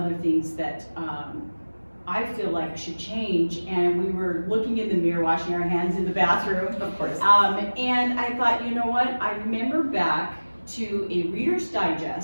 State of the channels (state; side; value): inverted; both; correlation -1.00